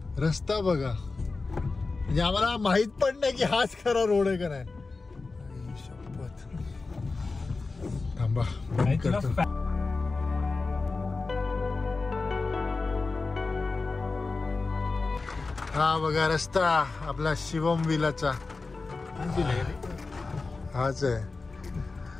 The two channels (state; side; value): quieter; right; 3.9 dB